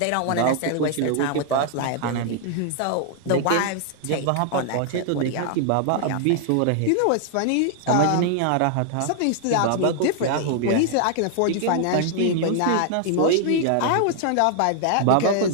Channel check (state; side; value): different; both; correlation 0.00